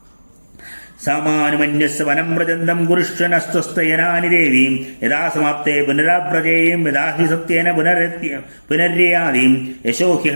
സാമാനുമന്യസ് വനം വ്രജന്തം കുരുഷ്വനസ്വസ്തയനാനി ദേവീം യഥാ സമാപ്തേ പുനരാവ്രജേയം യഥാ ഹി സത്യേന പുനര്യാദീം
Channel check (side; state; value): both; inverted; correlation -1.00